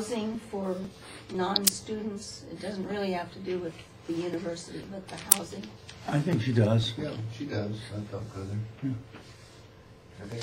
for non-students? It doesn't really have to do with the university, but the housing? I think she does. Yeah, she does. I felt good there. Have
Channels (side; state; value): both; identical; correlation 1.00